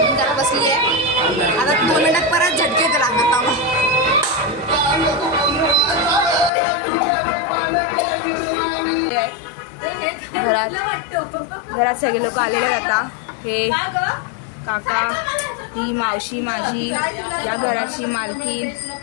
जरा बसली आहे आता 2 मिनिटात परत झटके तर लागत घरात सगळे लोक आलेले आहेत आता हे काका ही मावशी माझी या घराची मालकीन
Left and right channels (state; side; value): drops out; right; at 6.5 s